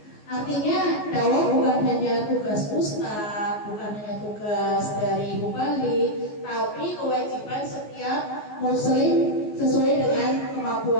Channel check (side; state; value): right; late; 14 ms